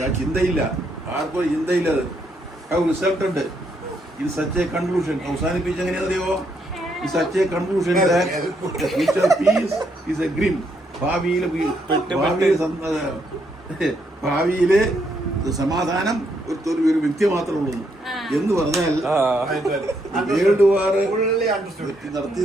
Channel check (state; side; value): normal; both; correlation 0.75